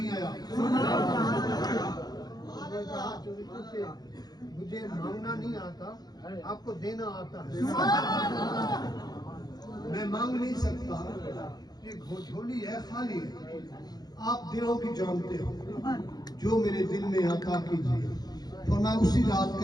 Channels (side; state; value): right; late; 0.19 ms